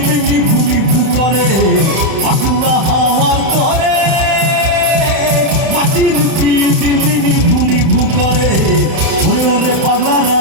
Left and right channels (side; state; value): left; late; 31 ms